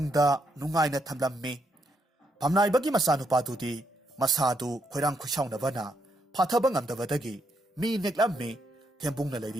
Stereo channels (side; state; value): both; normal; correlation 0.78